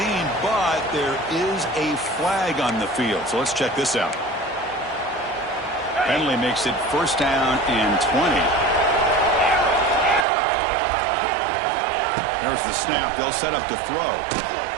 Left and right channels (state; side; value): drops out; left; at 10.2 s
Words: but there is a flag on the field. So let's check this out. Penalty makes it first down and 20. There's the snap. They'll set up to throw.